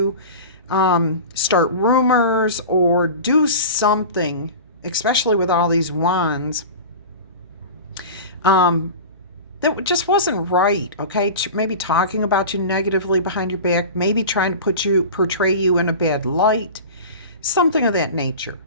start rumors or do something, especially with all these wands, that just wasn't right, okay? Maybe talking about you negatively behind your back, maybe trying to portray you in a bad light. something of that nature,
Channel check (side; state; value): both; inverted; correlation -0.32